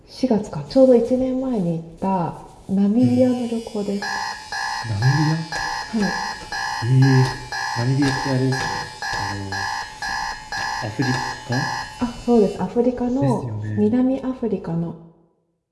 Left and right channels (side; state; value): both; identical; correlation 1.00